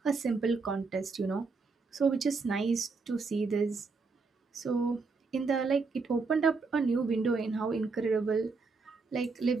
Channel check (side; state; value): left; quieter; 4.3 dB